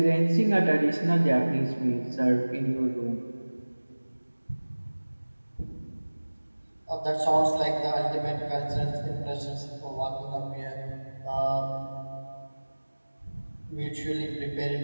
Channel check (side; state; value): both; inverted; correlation -1.00